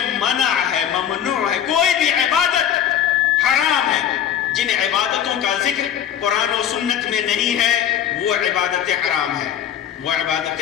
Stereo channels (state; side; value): quieter; right; 9.7 dB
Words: منع ہے، ممنوع ہے، کوئی بھی عبادت حرام ہے، جن عبادتوں کا ذکر قرآن و سنت میں نہیں ہے وہ عبادتیں حرام ہیں، وہ